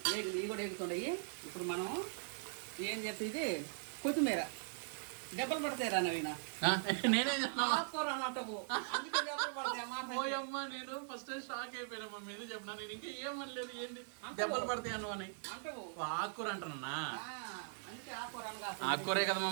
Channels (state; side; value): silent; left; 51 dB below the other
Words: ఇవి కూడా ఎగుతున్నాయి. ఇప్పుడు మనం ఏం చెప్తే ఇది కొత్తిమీర దెబ్బలు పడతాయి రా నవీన. నేనే ఆకుకూర అన్నట్టు అందుకే దెబ్బలు పడతాయి అమ్మా. నేను ఫస్ట్ షాక్ అయిపోయినా మమ్మీ, ఏదో చెప్పినా. నేను ఇంకా ఏమనలేదు, ఏంటి దెబ్బలు పడతాయి అను అని. ఆకుకూర అంటున్నా. అందుకే ఆకుకూర అనగా ఆకుకూరే కదా